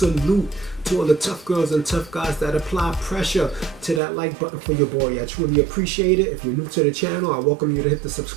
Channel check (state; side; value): drops out; left; at 4.0 s